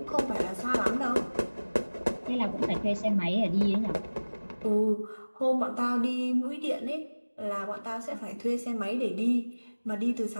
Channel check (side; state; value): both; inverted; correlation -1.00